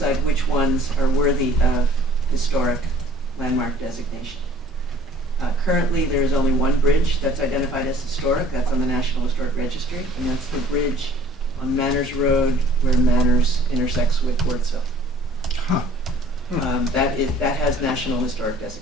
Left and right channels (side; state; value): both; normal; correlation 0.53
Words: which ones are worthy of historic landmark designation. Currently, there is only one bridge that's identified as historic. That's on the National Historic Registry, and that's the bridge on Manners Road where Manners intersects with Wardsville. Huh. That has National Historic